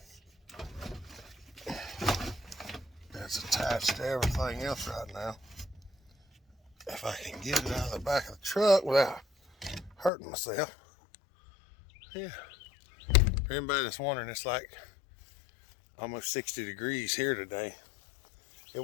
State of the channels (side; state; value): right; drops out; at 10.1 s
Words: It's attached to everything else right now. If I can get it out of the back of the truck without hurting myself. Yeah. For anybody that's wondering, it's like almost 60 degrees here today. It